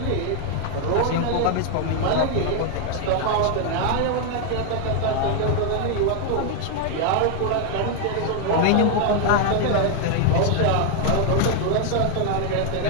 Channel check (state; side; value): different; both; correlation 0.01